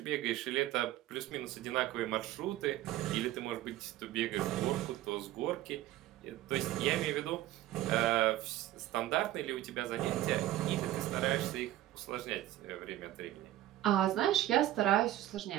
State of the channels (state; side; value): quieter; left; 14.4 dB